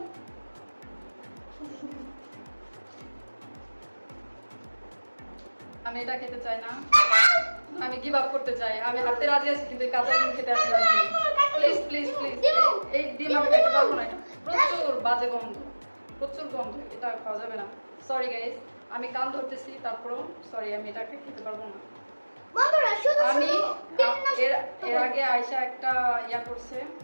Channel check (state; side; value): inverted; both; correlation -1.00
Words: আমি এটা খেতে চাই না, আমি গিভ আপ করতে চাই। আমি হাঁটতে রাজি আছি কিন্তু এই কাঁচা ডিম খেতে আমি রাজি নই। প্লিজ প্লিজ প্লিজ, এই ডিম আমি খেতে পারবো না। এটা প্রচুর বাজে গন্ধ, প্রচুর গন্ধ, এটা খাওয়া যাবে না। সরি গাইস, আমি কান ধরতেছি, তারপরেও সরি, আমি এটাকে খেতে পারবো না। আমি এর আগে আয়শা একটা ইয়া করছে,